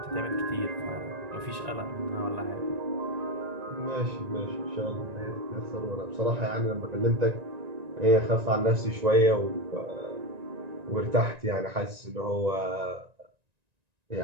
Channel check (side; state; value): left; late; 1.9 ms